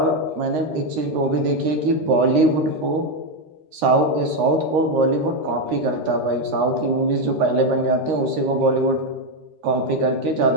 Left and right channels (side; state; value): left; late; 13 ms